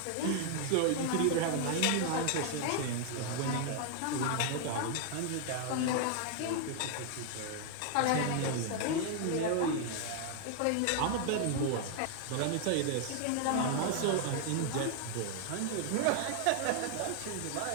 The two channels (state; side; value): different; both; correlation 0.00